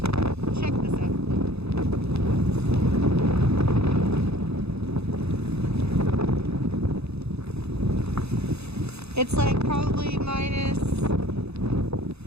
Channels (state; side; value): late; left; 0.79 ms